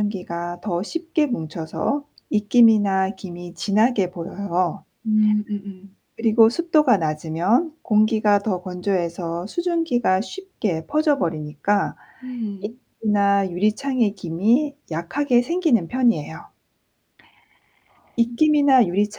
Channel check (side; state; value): both; identical; correlation 1.00